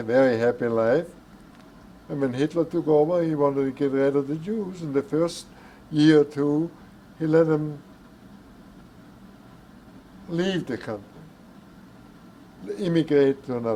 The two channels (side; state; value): both; identical; correlation 1.00